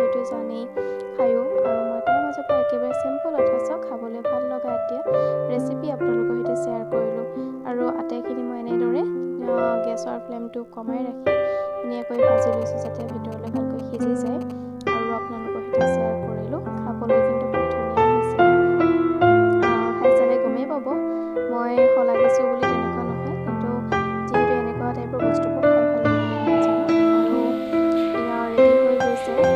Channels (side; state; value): both; identical; correlation 1.00